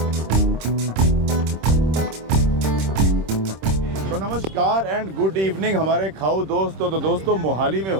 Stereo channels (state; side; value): late; left; 26 ms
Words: तो नमस्कार एंड गुड इवनिंग हमारे खाऊ दोस्तों। तो दोस्तों मोहाली में